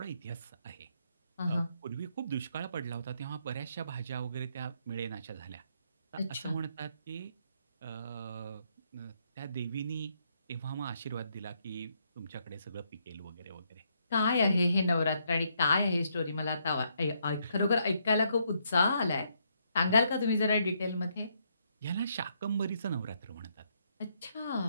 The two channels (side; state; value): both; inverted; correlation -0.74